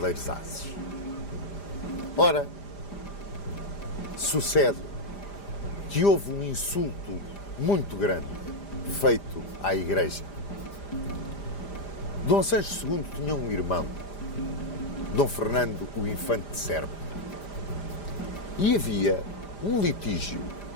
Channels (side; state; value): right; late; 5.0 ms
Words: ases. Ora, sucede que houve um insulto muito grande feito à Igreja. Dom Sancho II tinha um irmão, Dom Fernando, o Infante de Serpa. E havia um litígio